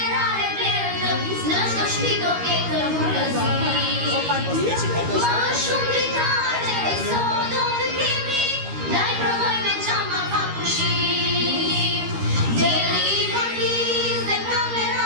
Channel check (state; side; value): late; left; 13 ms